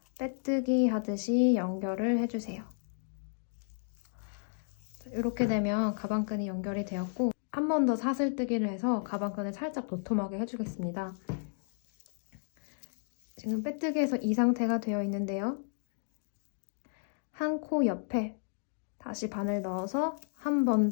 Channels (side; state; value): right; silent; digital silence